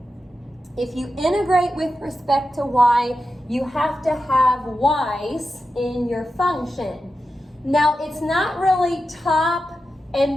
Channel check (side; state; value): both; normal; correlation 0.90